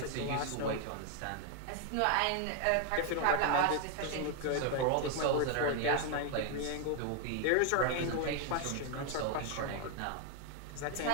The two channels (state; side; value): different; both; correlation 0.00